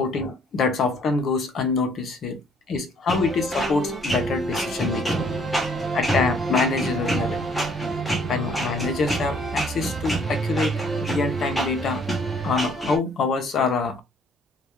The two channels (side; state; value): both; normal; correlation 0.61